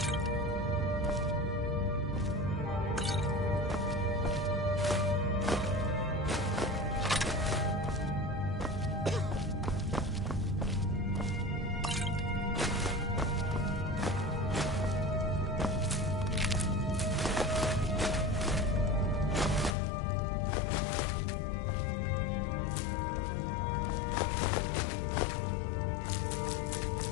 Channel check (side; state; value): right; drops out; at 19.8 s